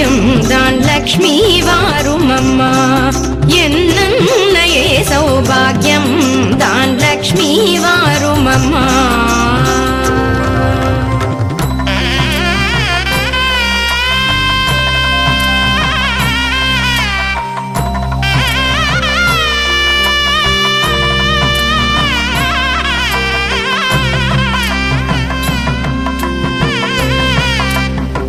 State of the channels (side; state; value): both; identical; correlation 1.00